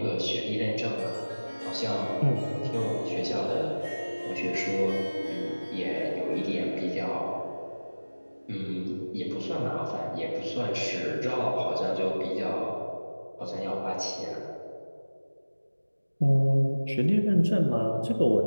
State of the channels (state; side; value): inverted; both; correlation -1.00